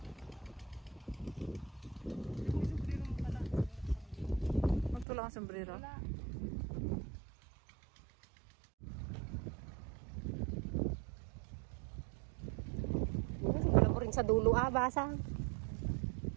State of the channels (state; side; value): drops out; left; at 5.1 s